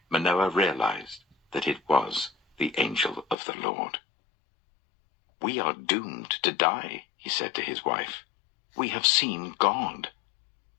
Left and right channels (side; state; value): right; drops out; at 3.4 s